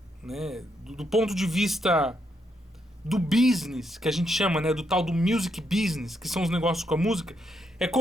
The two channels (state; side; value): normal; both; correlation 0.78